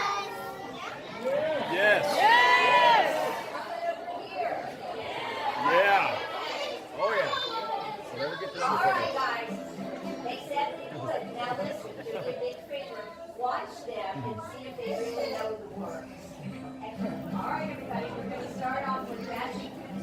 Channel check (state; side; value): identical; both; correlation 1.00